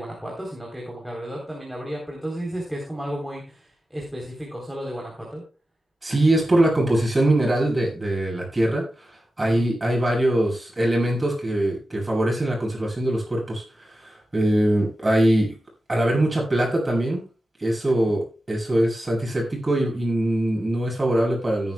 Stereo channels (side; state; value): both; normal; correlation 0.92